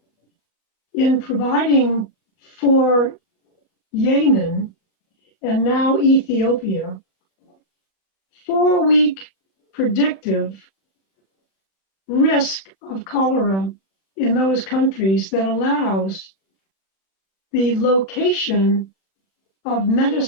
in providing for Yemen and now Ethiopia 4-week predictive risk of cholera in those countries that allows the location of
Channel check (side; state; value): right; late; 31 ms